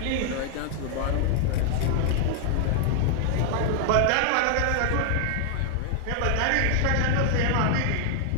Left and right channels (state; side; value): different; both; correlation 0.00